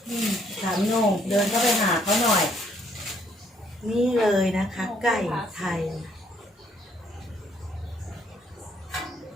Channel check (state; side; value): normal; both; correlation 0.66